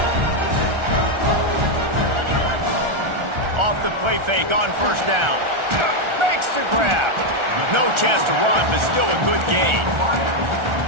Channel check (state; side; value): late; left; 1.4 ms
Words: Off the play fake on first down. Makes the grab. No chance to run, but still a good gain.